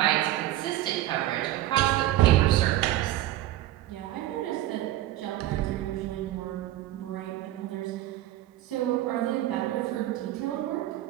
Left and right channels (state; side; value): quieter; left; 14.9 dB